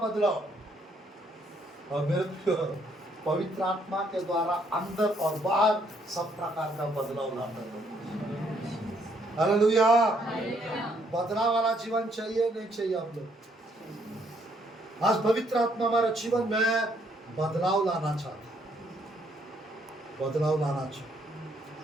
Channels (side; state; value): both; normal; correlation 0.70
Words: और मेरे प्रियो पवित्र आत्मा के द्वारा अंदर और बाहर सब प्रकार का बदलाव लाता है। हालेलुया। बदलाव वाला जीवन चाहिए नहीं चाहिए आप लोग? आज पवित्र आत्मा हमारे जीवन में बदलाव लाना चाहता है, बदलाव लाना चाहता।